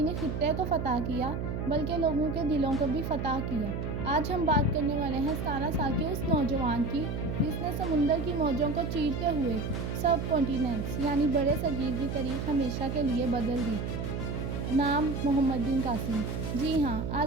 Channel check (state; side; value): noise; right; hum, 3 dB below the sound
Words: خطے کو فتح کیا بلکہ لوگوں کے دلوں کو بھی فتح کیا۔ آج ہم بات کرنے والے ہیں 17 سال کے اس نوجوان کی جس نے سمندر کی موجوں کو چیرتے ہوئے سب کانٹیننٹس یعنی بڑے صغیر کی تاریخ ہمیشہ کے لیے بدل دی۔ نام محمد بن قاسم۔ جی ہاں،